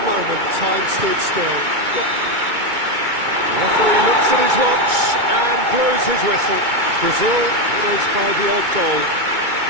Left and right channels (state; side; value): late; left; 2.2 ms